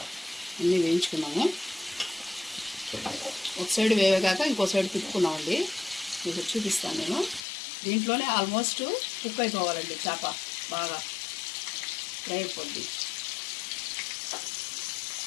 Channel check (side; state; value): right; drops out; at 7.4 s